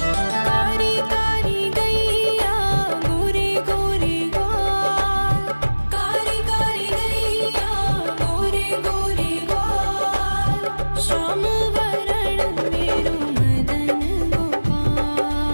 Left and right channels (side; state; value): both; inverted; correlation -1.00